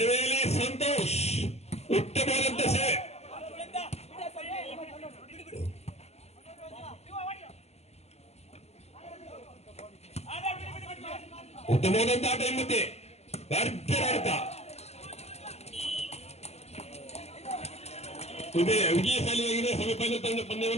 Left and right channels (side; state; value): right; late; 0.30 ms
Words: ಸಂತೋಷ್ ಉತ್ತಮವಾದಂತ ಸೇವೆ. ಉತ್ತಮವಾದಂತ ಆಟ ಮತ್ತೆ ಭರ್ಜರಿ ಆಟ. ಇದೇ ವಿಜಯಶಾಲಿಯಾಗಿದೆ ಸೆಮಿಫೈನಲ್ ತಂಡ